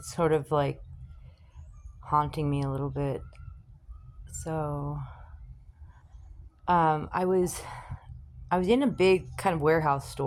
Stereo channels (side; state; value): both; identical; correlation 1.00